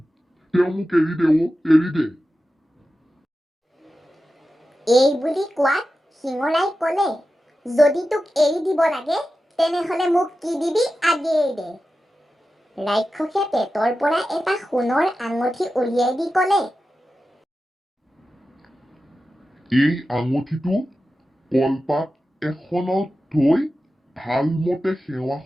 তেওঁ মোক এৰি দে, এৰি দে। এই বুলি কোৱাত শিঙৰাই ক'লে, যদি তোক এৰি দিব লাগে তেনেহ'লে মোক কি দিবি আগেয়ে দে। ৰাক্ষসে পেটৰ পৰা এটা সোণৰ আঙঠি উলিয়াই দি ক'লে, এই আঙঠিটো কলপাত এখনত থৈ ভালমতে সেৱা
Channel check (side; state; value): both; normal; correlation 0.92